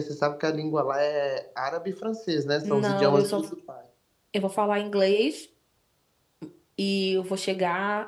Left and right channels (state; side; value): identical; both; correlation 1.00